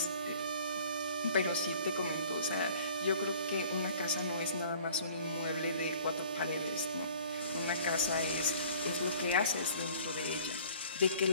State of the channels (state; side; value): inverted; both; correlation -0.50